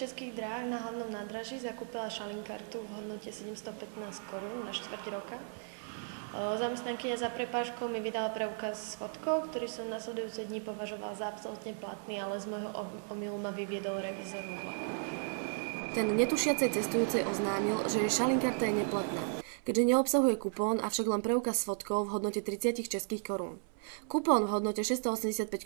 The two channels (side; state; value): left; silent; 54 dB below the other